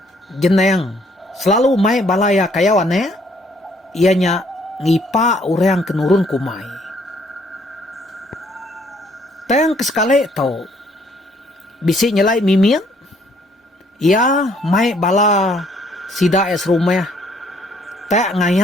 Jeneng. Selalu mai balaya kayawane. Ianya ngipa urang kenurun kumai. Teng kesekali to. Bisi nyelai mimin. Ya mai bala sida es rumah. Tak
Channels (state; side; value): normal; both; correlation 0.65